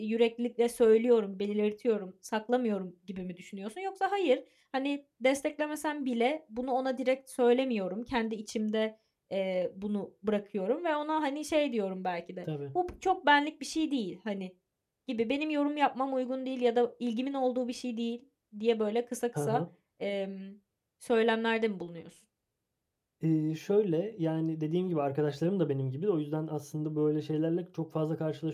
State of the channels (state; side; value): identical; both; correlation 1.00